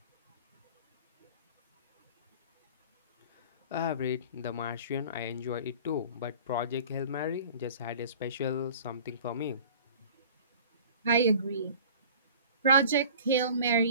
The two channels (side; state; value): both; inverted; correlation -0.44